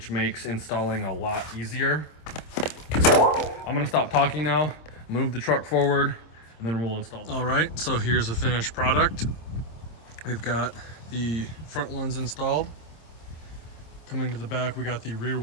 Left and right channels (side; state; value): right; late; 26 ms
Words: makes installing a lot easier. I'm gonna stop talking now, move the truck forward, and then we'll install them. All right, so here's the finished product. We've got the front ones installed. Coming to the back, we got the rear